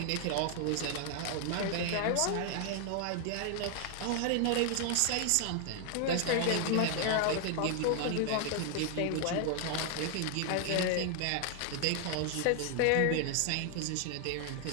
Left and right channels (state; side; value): different; both; correlation 0.00